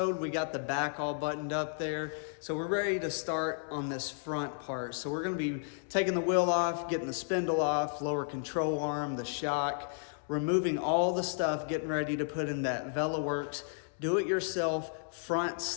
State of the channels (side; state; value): right; silent; 56 dB below the other